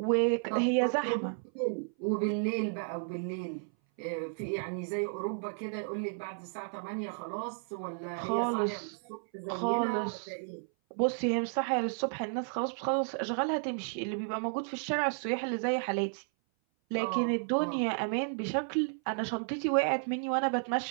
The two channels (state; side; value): silent; left; 56 dB below the other